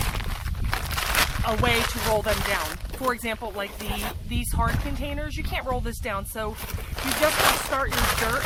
a way to roll them down. For example, like these hard containers, you can't roll this down, so you just want to start your dirt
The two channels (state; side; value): identical; both; correlation 1.00